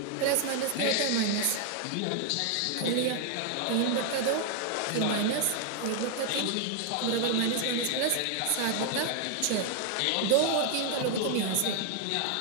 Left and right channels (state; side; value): different; both; correlation 0.00